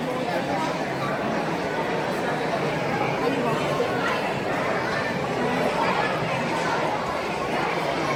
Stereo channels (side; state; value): both; identical; correlation 1.00